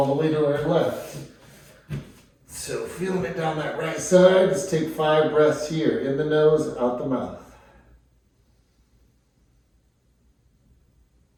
the way to our left. So feeling it down that right side. Let's take 5 breaths here. In the nose, out the mouth.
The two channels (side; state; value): both; identical; correlation 1.00